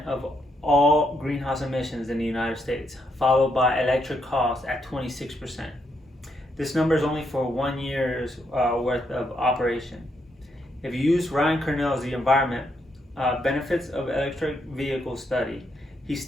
of all greenhouse emissions in the United States, followed by electric cars at 26%. This number is only for 1 year's worth of operation. If you use Ryan Kernell's The Environment Benefits of Electric Vehicle study, he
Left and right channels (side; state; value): both; normal; correlation 0.77